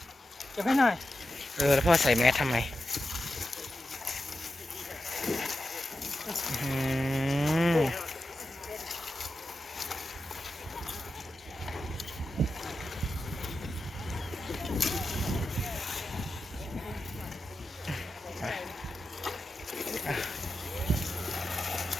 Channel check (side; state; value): both; normal; correlation 0.90